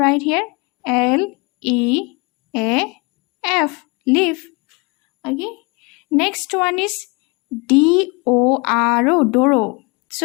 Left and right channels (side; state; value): right; quieter; 28.9 dB